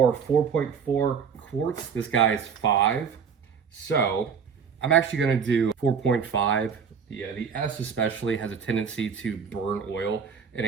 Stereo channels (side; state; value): left; quieter; 6.5 dB